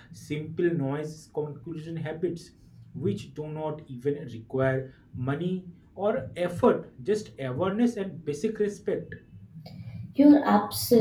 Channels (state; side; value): identical; both; correlation 1.00